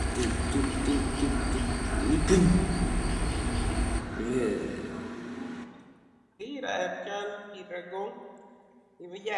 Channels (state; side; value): identical; both; correlation 1.00